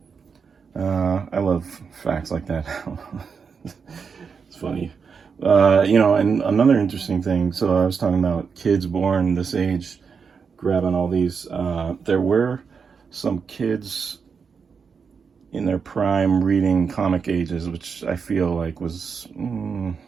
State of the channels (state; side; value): quieter; left; 5.9 dB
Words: I love facts like that. It's funny. You know, and another interesting thing, so I was talking about kids born this age grabbing all these. There were some kids in their prime reading comic ages, which I feel like was